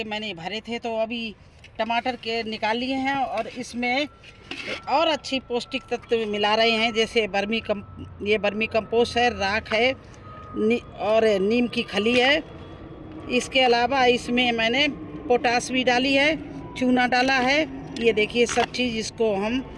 मैंने भरे थे। तो अभी टमाटर के निकाल लिए हैं और इसमें और अच्छी पौष्टिक तत्व मिला रहे हैं। जैसे ये बर्मी कंपोस्ट है, राख है और नीम की खली है। इसके अलावा इसमें मैंने पोटास भी डाली है, चूना डाला है। ये देखिए सब चीज़, इसको हम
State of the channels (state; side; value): identical; both; correlation 1.00